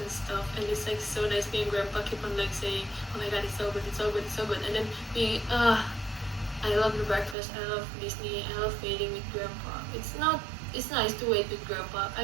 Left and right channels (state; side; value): drops out; left; at 7.4 s